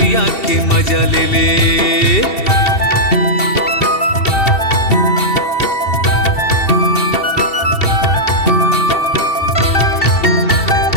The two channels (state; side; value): late; right; 2.7 ms